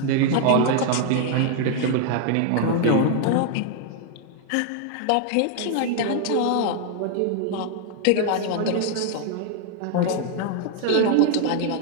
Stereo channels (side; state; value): both; different; correlation 0.00